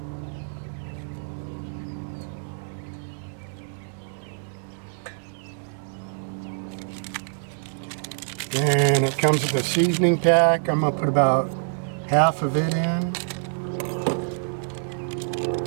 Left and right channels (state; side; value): silent; left; 61 dB below the other